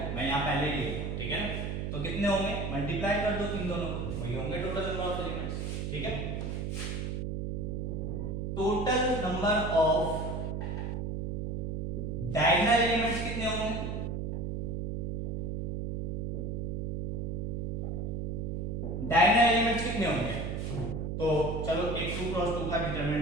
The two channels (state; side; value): noise; right; hum, 2 dB below the sound